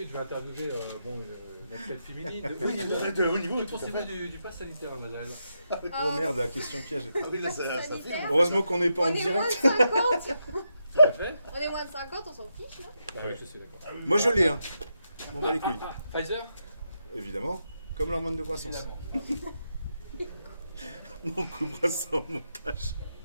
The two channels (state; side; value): inverted; both; correlation -0.83